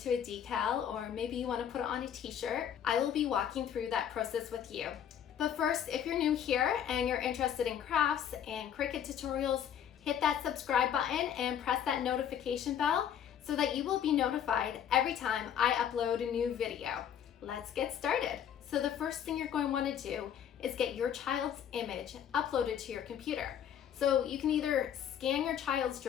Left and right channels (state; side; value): quieter; right; 9.1 dB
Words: a decal, or maybe you want to put it on a t-shirt, I will be walking through that process with you. But first, if you're new here and you're interested in crafts and Cricut tutorials, hit that subscribe button and press that notification bell so that you will be notified every time I upload a new video. Let's get started. So the first thing you're going to want to do is get your child's image uploaded to your computer. So you can either scan your child's